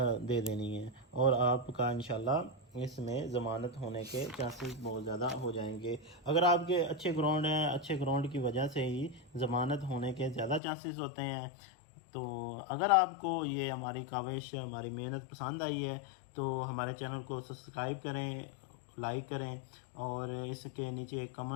دے دینی ہے، اور آپ کا انشاءاللہ اس میں ضمانت ہونے کے چانسز بہت زیادہ ہو جائیں گے۔ اگر آپ کے اچھے گراؤنڈ ہیں، اچھے گراؤنڈ کی وجہ سے ہی ضمانت ہونے کے زیادہ چانسز ہوتے ہیں۔ تو اگر آپ کو یہ ہماری کاوش، ہماری محنت پسند آئی ہے تو ہمارے چینل کو سبسکرائب کریں، لائک کریں، اور اس کے نیچے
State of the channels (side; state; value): right; drops out; at 10.6 s